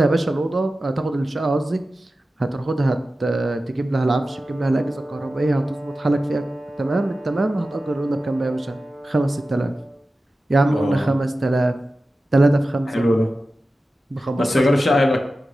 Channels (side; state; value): both; normal; correlation 0.94